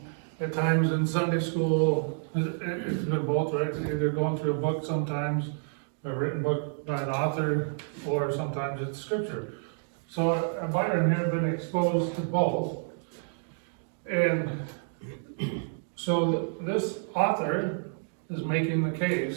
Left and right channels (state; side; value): silent; left; digital silence